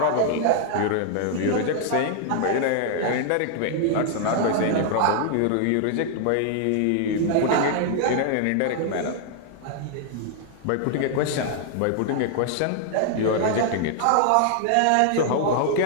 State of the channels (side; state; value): both; different; correlation -0.01